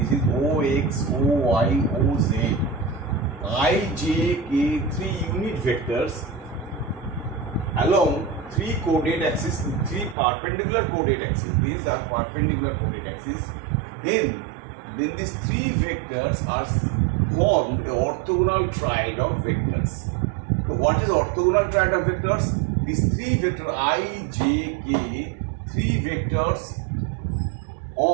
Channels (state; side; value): drops out; left; at 10.2 s